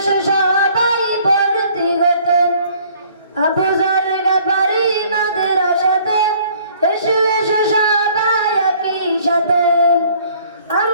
সবাই ভর্তি হতে। আবু যর গফারি মাদ্রাসাতে এসো এসো সবাই একই সাথে।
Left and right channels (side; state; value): both; inverted; correlation -0.57